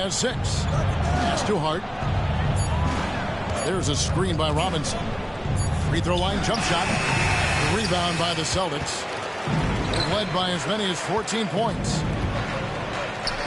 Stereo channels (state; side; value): identical; both; correlation 1.00